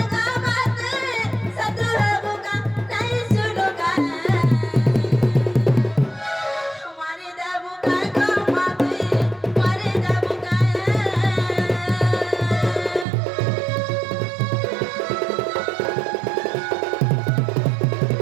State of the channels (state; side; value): drops out; left; at 13.1 s